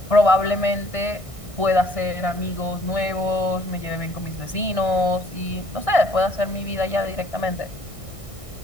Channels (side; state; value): left; late; 1.6 ms